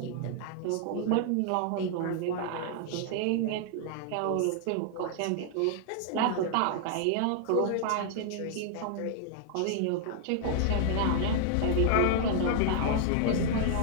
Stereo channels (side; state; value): both; different; correlation -0.01